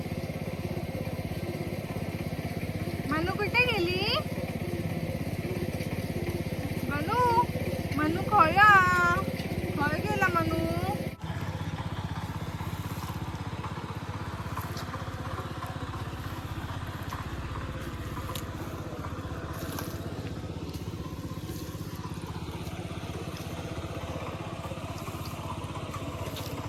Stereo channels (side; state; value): both; identical; correlation 1.00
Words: मनू कुठे गेली मनू मनू खोया खोय गेला मनू